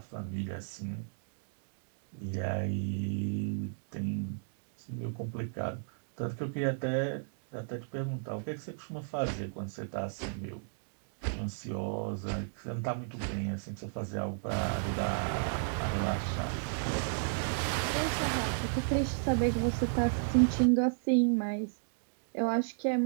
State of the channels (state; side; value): silent; left; digital silence